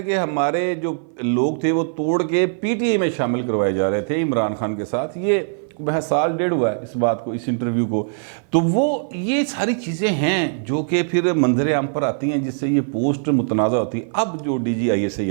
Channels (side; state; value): left; silent; 57 dB below the other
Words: कि हमारे जो लोग थे वो तोड़ के पीटीआई में शामिल करवाए जा रहे थे इमरान खान के साथ। ये वह साल डेढ़ हुआ है इस बात को, इस इंटरव्यू को। तो वो ये सारी चीज़ें हैं जो कि फिर मंजर आम पर आती हैं जिससे ये पोस्ट मुतनाज़ा होती है। अब जो